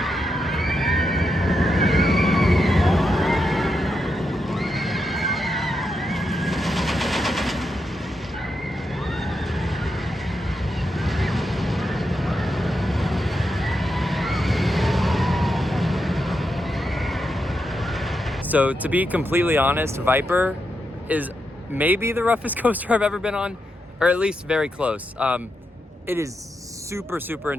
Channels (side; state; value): both; normal; correlation 0.85